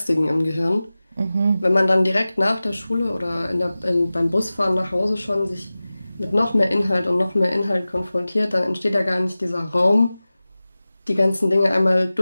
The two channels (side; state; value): both; inverted; correlation -0.97